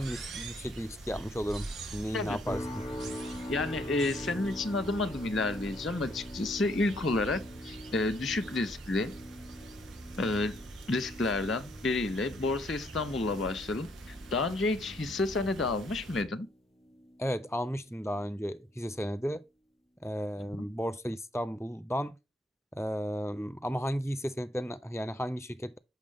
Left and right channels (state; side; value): normal; both; correlation 0.70